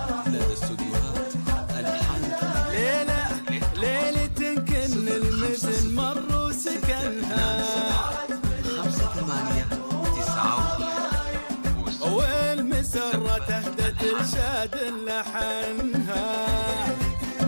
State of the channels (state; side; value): inverted; both; correlation -1.00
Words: ليلة كل المزن مر سكنها والمسرة تهدت رشاد لحنها